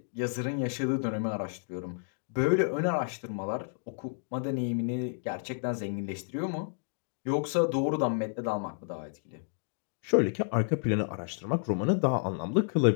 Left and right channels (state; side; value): silent; right; digital silence